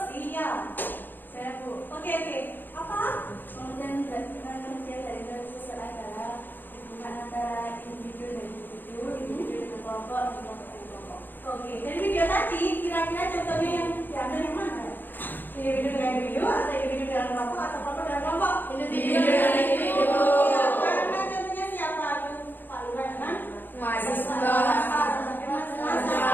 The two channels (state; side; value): late; right; 0.091 ms